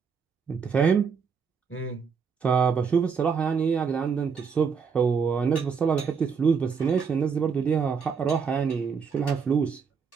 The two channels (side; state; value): left; quieter; 6.0 dB